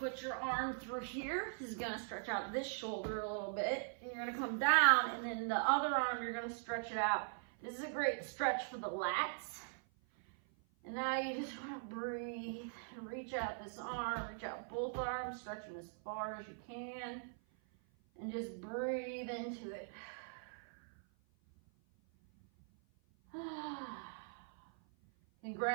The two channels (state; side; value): silent; left; 50 dB below the other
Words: your arm through here. This is gonna stretch out this shoulder a little bit. And you're gonna come down, and then the other arm, you're gonna stretch it out. This is a great stretch for the lats. And now you just wanna breathe and reach out this arm, reach out both arms, stretch them as far as you can, and just breathe into it.